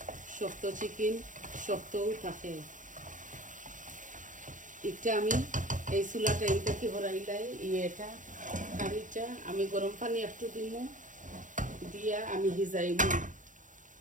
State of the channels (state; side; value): late; left; 0.37 ms